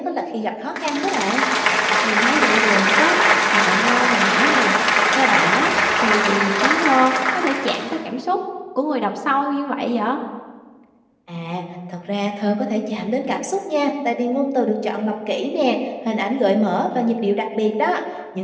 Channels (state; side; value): identical; both; correlation 1.00